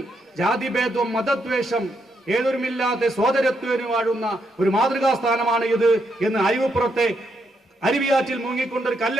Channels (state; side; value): normal; both; correlation 0.78